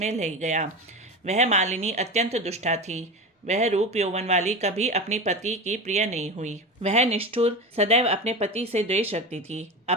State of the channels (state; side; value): normal; both; correlation 0.25